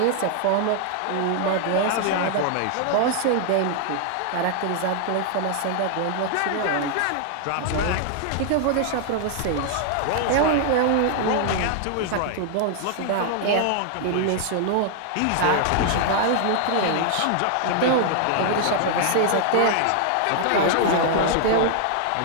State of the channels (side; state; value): both; different; correlation 0.00